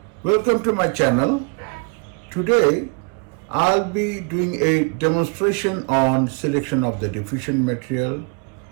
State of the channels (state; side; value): quieter; left; 35.0 dB